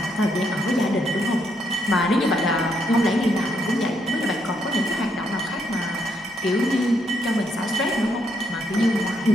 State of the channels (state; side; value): normal; both; correlation 0.75